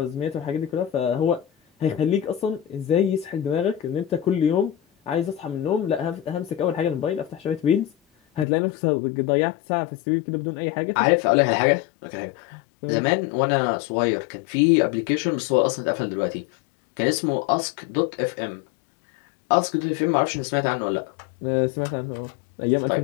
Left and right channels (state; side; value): drops out; right; at 8.5 s